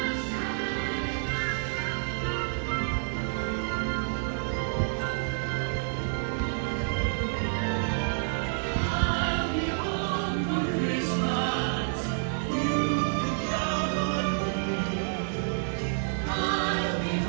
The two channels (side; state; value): left; silent; digital silence